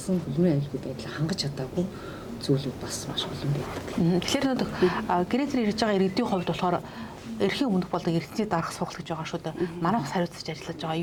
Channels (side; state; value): both; identical; correlation 1.00